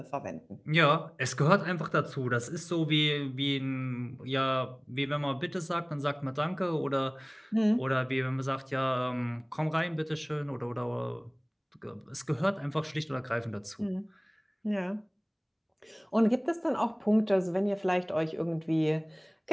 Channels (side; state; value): both; identical; correlation 1.00